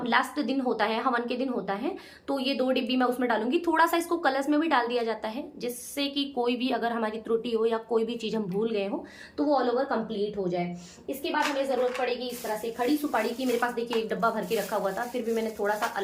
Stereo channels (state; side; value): identical; both; correlation 1.00